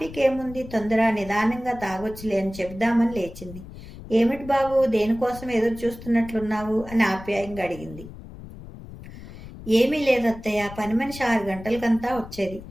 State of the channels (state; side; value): noise; left; rumble, 15 dB below the sound